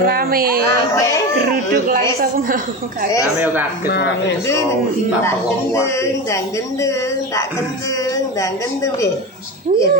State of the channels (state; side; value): normal; both; correlation 0.23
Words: Geruduk langsung mau. Kami yo kaget ora Dan gendeng piye? Iya